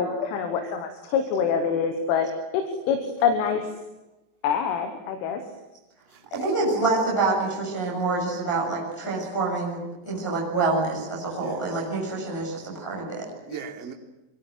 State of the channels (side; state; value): right; late; 23 ms